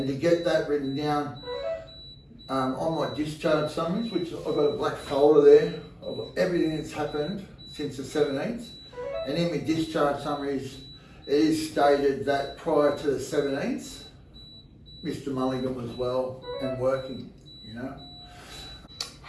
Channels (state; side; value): identical; both; correlation 1.00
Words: to get that written down on my discharge summaries, which I've got a black folder there of everything that's happened since the 17th, and in my discharge summaries it is stated that prior to the 17th, Mr. Mulligan was well and working, you know.